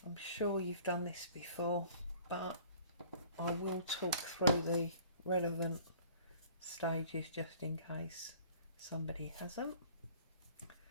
I'm sure you've done this before, but I will talk through the relevant stages just in case somebody hasn't.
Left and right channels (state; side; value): inverted; both; correlation -0.52